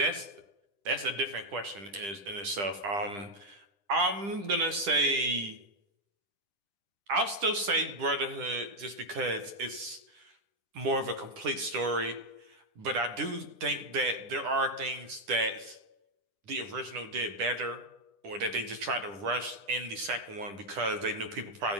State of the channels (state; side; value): late; left; 10 ms